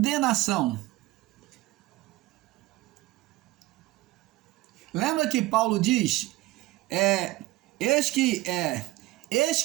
Lembra que Paulo diz, eis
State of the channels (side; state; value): left; quieter; 18.4 dB